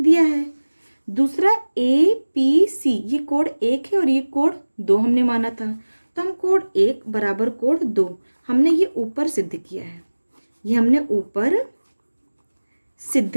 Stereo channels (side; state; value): both; inverted; correlation -1.00